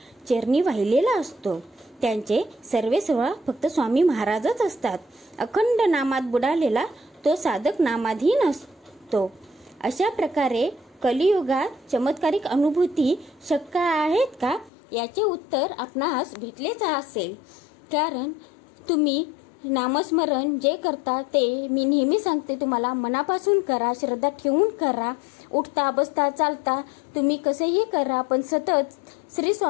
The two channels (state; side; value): drops out; right; at 14.7 s